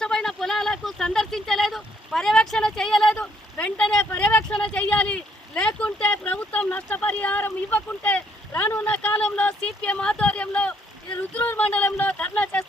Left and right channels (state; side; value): normal; both; correlation 0.69